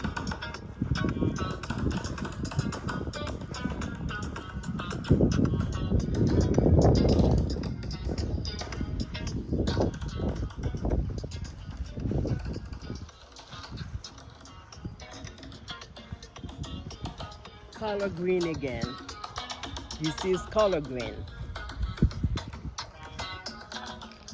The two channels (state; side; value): identical; both; correlation 1.00